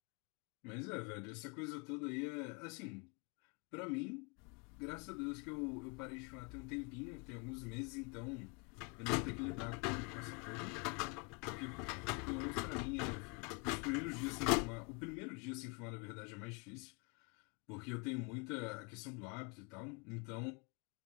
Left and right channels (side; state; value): right; quieter; 31.7 dB